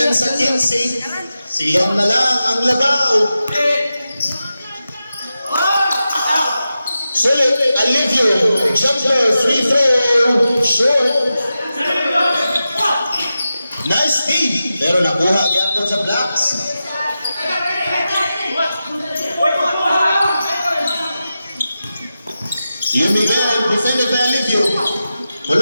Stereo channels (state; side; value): inverted; both; correlation -0.92